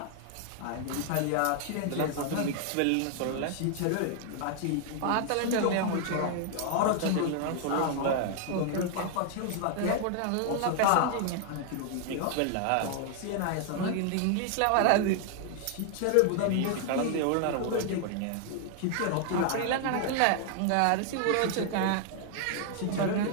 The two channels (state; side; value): different; both; correlation 0.00